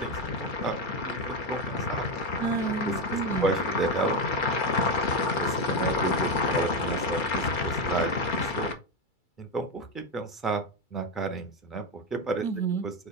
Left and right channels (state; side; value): late; right; 2.3 ms